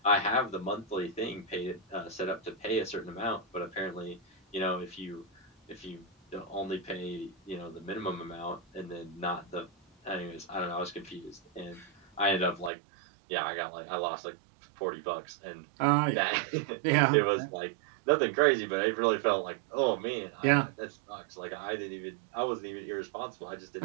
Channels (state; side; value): drops out; left; at 12.7 s